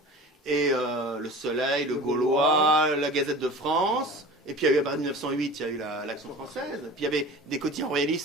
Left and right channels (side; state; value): both; normal; correlation 0.38